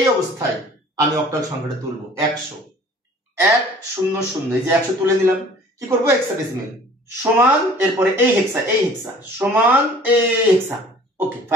অবস্থায় আমি অক্টাল সংখ্যাটা তুলবো 100 100, এই যে 100 তুলে নিলাম। কি করব হেক্সাডেসিমেল সমান, এরপরে এই হেক্সা সমান এই হেক্সা। ওকে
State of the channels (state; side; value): normal; both; correlation 0.50